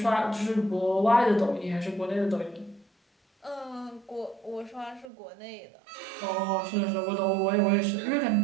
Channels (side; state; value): left; drops out; at 5.1 s